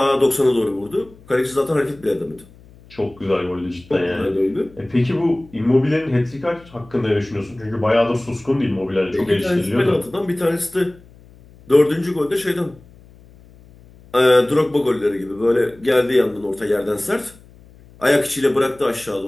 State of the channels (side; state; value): left; noise; hum, 24 dB below the sound